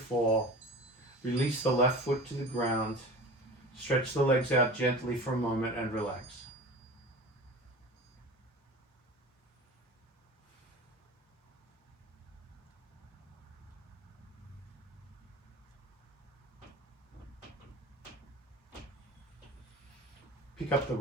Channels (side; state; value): both; normal; correlation 0.36